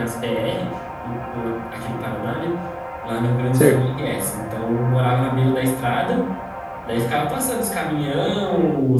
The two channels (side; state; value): both; identical; correlation 1.00